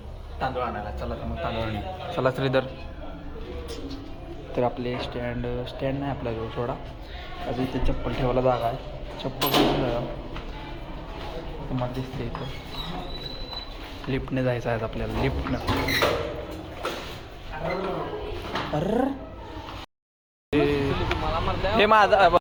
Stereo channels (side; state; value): both; identical; correlation 1.00